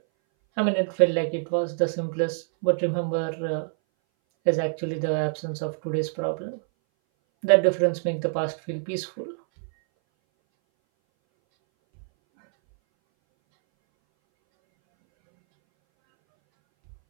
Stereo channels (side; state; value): left; silent; 59 dB below the other